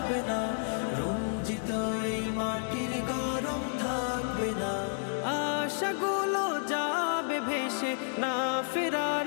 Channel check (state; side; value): silent; right; digital silence